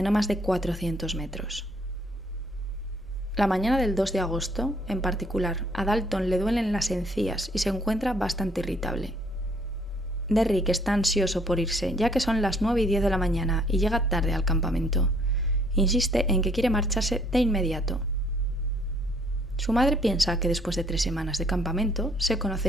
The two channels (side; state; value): both; normal; correlation 0.64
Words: no más de 400 metros. La mañana del 2 de agosto, en particular, a Dalton le duelen las encías y se encuentra bastante irritable. Derrick está ansioso por irse, ya que son las 9:10 de la mañana y llega tarde al campamento. Insiste en que quiere marcharse de inmediato. Su madre piensa que después de 3 semanas de campamento se